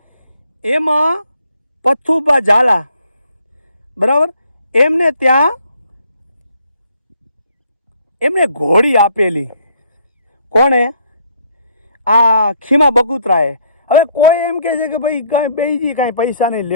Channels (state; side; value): inverted; both; correlation -0.65